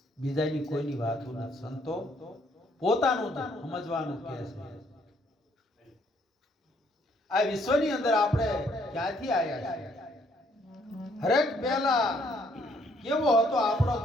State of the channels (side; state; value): both; normal; correlation 0.67